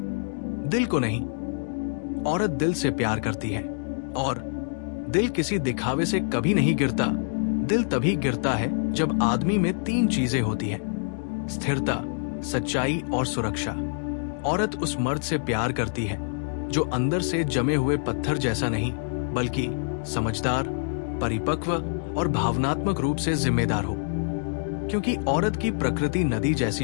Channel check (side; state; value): right; silent; digital silence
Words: दिल को नहीं। औरत दिल से प्यार करती है और दिल किसी दिखावे से कभी नहीं गिरता। दिल तभी गिरता है जब आदमी में 3 चीजें होती हैं: स्थिरता, सच्चाई और सुरक्षा। औरत उस मर्द से प्यार करती है जो अंदर से जमे हुए पत्थर जैसा नहीं, बल्कि समझदार, परिपक्व और भावनात्मक रूप से जिम्मेदार हो। क्योंकि औरत की प्रकृति नदी